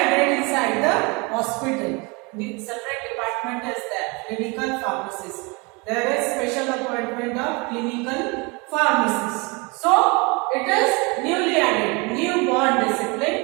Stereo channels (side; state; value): left; quieter; 28.4 dB